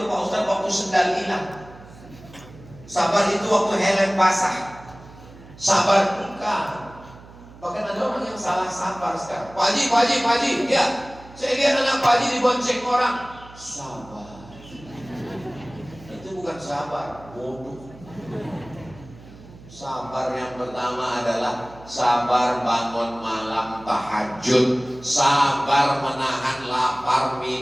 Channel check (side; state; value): right; noise; hum, 20 dB below the sound